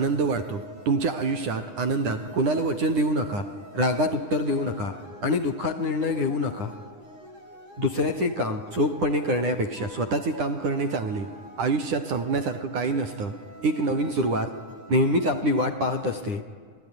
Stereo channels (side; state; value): left; late; 9.9 ms